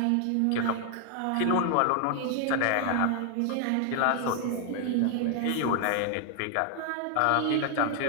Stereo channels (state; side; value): different; both; correlation 0.00